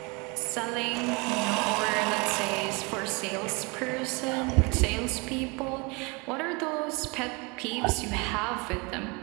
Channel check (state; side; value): quieter; left; 28.5 dB